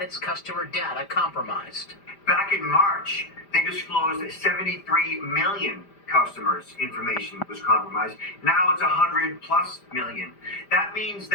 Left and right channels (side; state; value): right; late; 5.0 ms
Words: its customer data compromised. Back in March, they disclosed that 73 million customers' information was compromised. Now it's 100+ million. That means